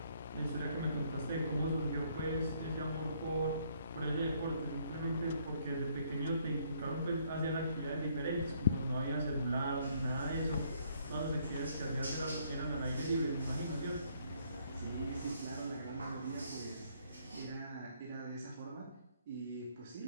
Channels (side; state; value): both; inverted; correlation -0.67